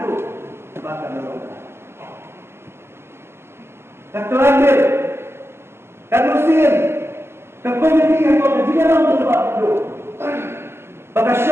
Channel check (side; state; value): left; late; 0.12 ms